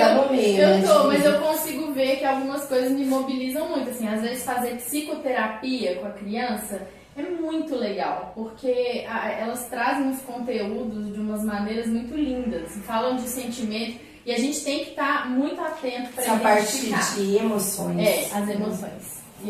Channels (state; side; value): identical; both; correlation 1.00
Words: no meio, eu tô, mas eu consigo ver que algumas coisas me mobilizam muito. Assim, às vezes fazer psicoterapia com a criança é muito legal, porque elas trazem os conteúdos de umas maneiras muito lindas, falam de sentimento, e a gente tem que estar muito atento para identificar. Essa parte de emoções. As emoções. E